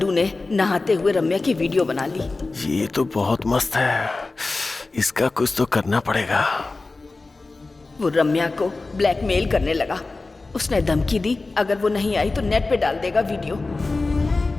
ने नहाते हुए रम्या की वीडियो बना ली। ये तो बहुत मस्त है, इसका कुछ तो करना पड़ेगा। वो रम्या को ब्लैकमेल करने लगा। उसने धमकी दी अगर वो नहीं आई तो नेट पे डाल देगा वीडियो।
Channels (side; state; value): right; quieter; 3.5 dB